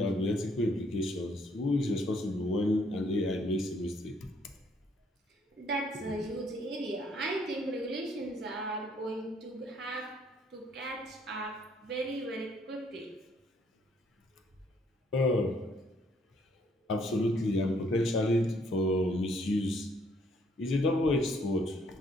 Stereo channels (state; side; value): normal; both; correlation 0.67